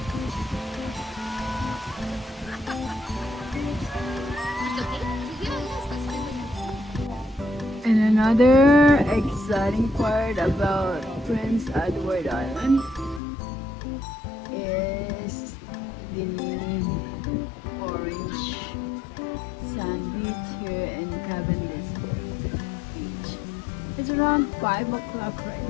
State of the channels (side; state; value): right; drops out; at 13.2 s